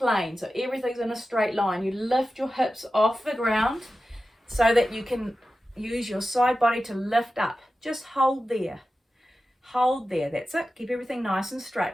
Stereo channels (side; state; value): both; normal; correlation 0.93